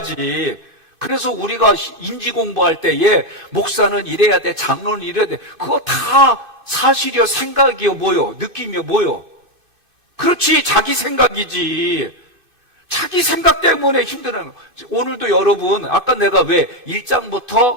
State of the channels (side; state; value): left; late; 2.5 ms